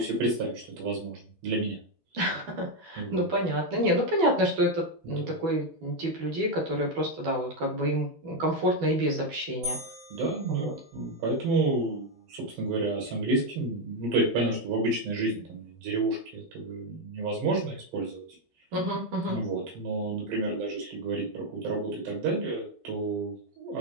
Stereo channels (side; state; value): left; late; 12 ms